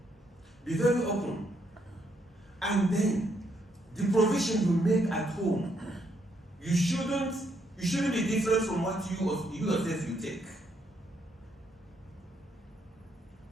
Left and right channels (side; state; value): both; normal; correlation 0.75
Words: Be very open. And then the provision you make at home, you shouldn't be different from what you yourself you take.